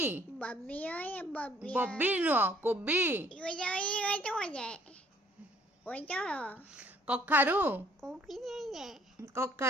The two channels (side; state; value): both; normal; correlation 0.61